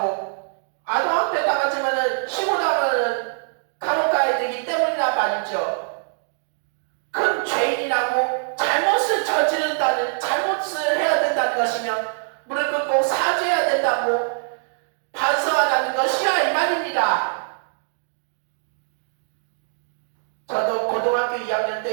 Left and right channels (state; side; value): silent; left; digital silence